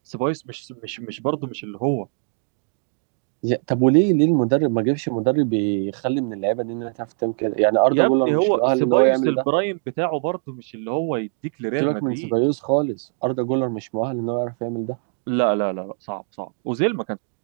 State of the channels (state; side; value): silent; left; digital silence